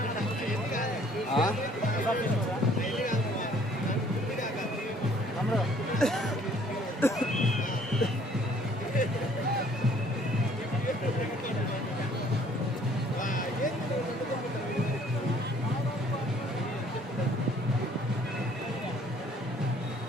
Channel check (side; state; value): both; normal; correlation 0.59